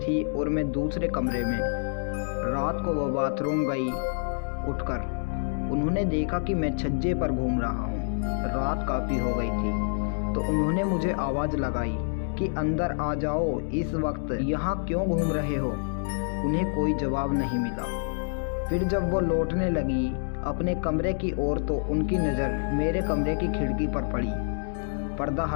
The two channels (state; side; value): silent; right; digital silence